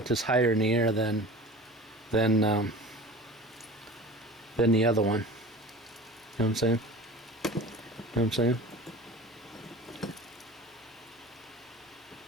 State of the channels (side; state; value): both; normal; correlation 0.38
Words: this higher in the air than the other one. You know what I'm saying? You know what I'm saying?